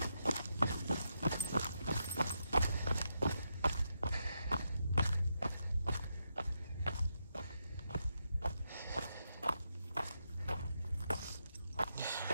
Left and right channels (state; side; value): inverted; both; correlation -0.83